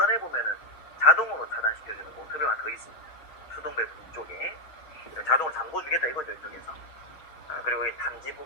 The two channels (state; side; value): late; right; 6.3 ms